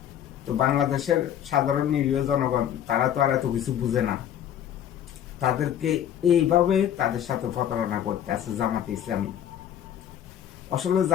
তো বাংলাদেশের সাধারণ নিরীহ জনগণ তারা তো আর এত কিছু বুঝে না, তাদেরকে এইভাবে তাদের সাথে প্রতারণা করতে আছে জামাতে ইসলামী। আসলে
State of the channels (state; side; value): quieter; right; 10.3 dB